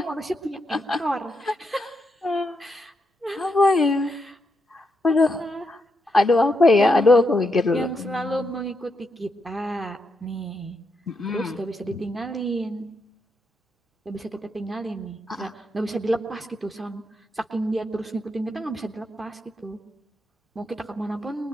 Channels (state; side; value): normal; both; correlation 0.82